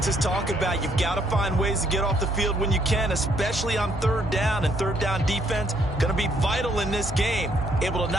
talk about. You've got to find ways to get off the field when you can, especially on 3rd down. And 3rd down defense going to be vital in this game. Able to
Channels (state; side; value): normal; both; correlation 0.69